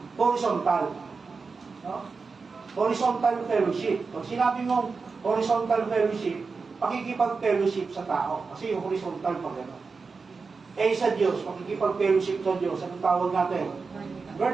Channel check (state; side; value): quieter; left; 4.6 dB